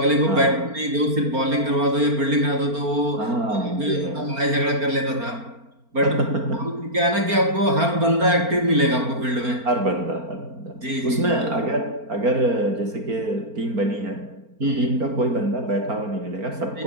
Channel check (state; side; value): late; left; 4.4 ms